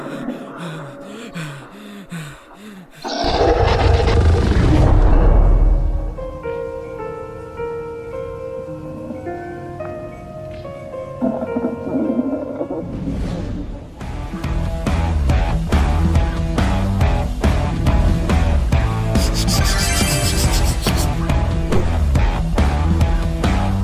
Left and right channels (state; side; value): identical; both; correlation 1.00